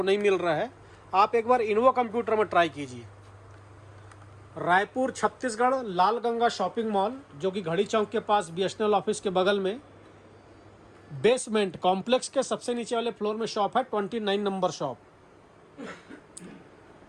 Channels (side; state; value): both; identical; correlation 1.00